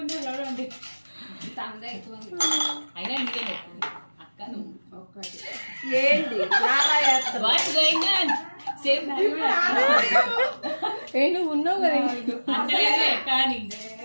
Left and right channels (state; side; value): inverted; both; correlation -1.00